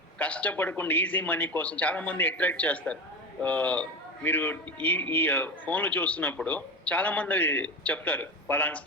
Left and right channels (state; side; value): normal; both; correlation 0.24